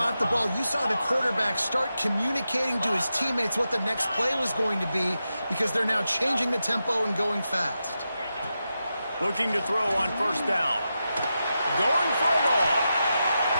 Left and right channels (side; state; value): both; inverted; correlation -0.89